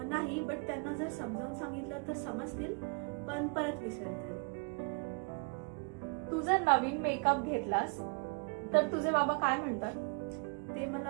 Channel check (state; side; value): quieter; left; 35.1 dB